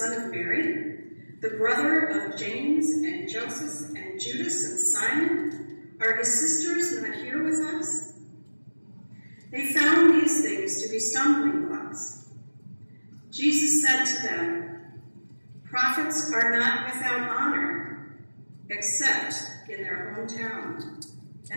of Mary, the brother of James and Joseph and Judas and Simon? Are his sisters not here with us?" They found these things to be stumbling blocks. Jesus said to them, "Prophets are not without honor, except in their hometown,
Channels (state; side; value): inverted; both; correlation -1.00